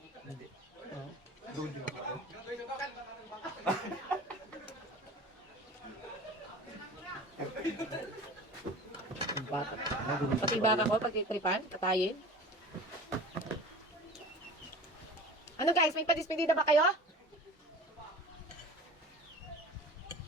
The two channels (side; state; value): both; normal; correlation 0.39